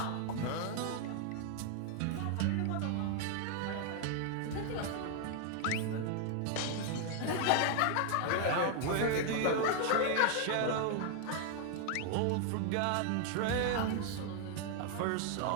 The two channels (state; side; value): different; both; correlation 0.00